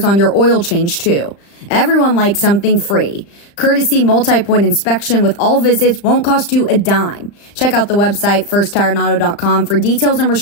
on your oil change too. Everyone likes something free. Courtesy multi-point inspection with all visits won't cost you a dime. Check out the website firsttireandauto.com for details and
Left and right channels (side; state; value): right; late; 35 ms